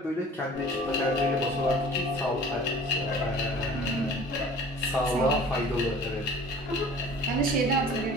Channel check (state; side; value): normal; both; correlation 0.45